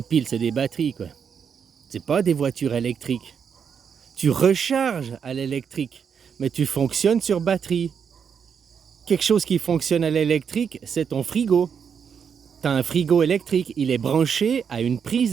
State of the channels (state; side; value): quieter; left; 7.0 dB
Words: piles, c'est des batteries, quoi. C'est pas des voitures électriques. Tu recharges à l'électrique, mais tu fonctionnes sur batterie. Quelque chose qui fonctionne à l'électrique, c'est ton frigo. T'as un frigo électrique, il est branché à une